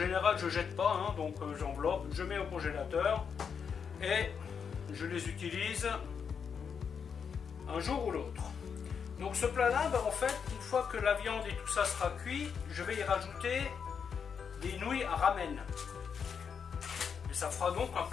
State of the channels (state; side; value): quieter; right; 6.6 dB